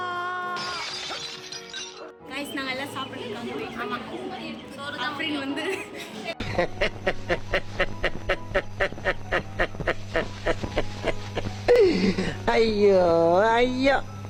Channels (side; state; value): both; identical; correlation 1.00